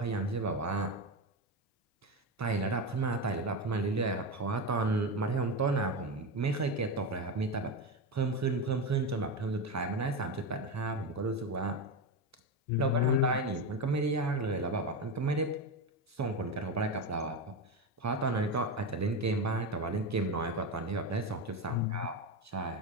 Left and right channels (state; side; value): normal; both; correlation 0.16